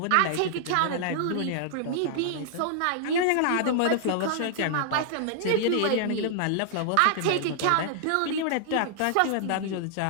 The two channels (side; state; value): both; different; correlation -0.01